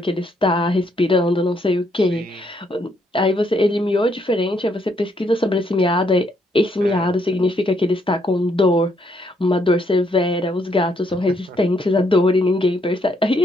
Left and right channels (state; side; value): normal; both; correlation 0.73